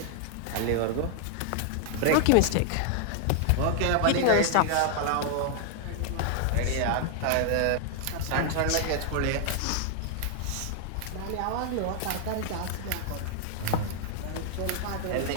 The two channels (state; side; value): different; both; correlation 0.00